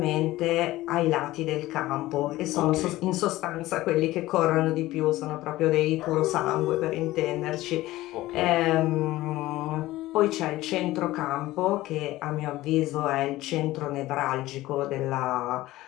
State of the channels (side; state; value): right; quieter; 17.1 dB